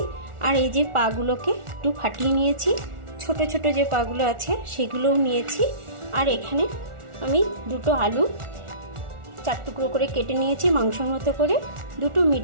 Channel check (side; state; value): left; late; 1.4 ms